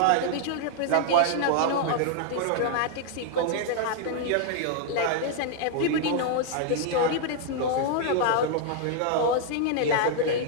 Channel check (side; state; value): both; different; correlation 0.00